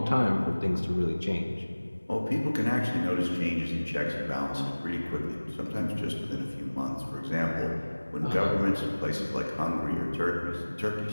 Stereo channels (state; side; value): inverted; both; correlation -1.00